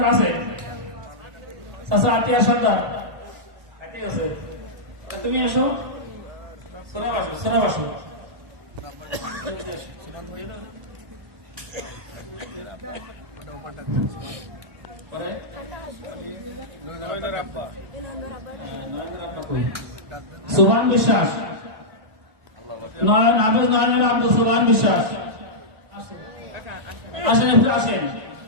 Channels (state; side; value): late; left; 1.9 ms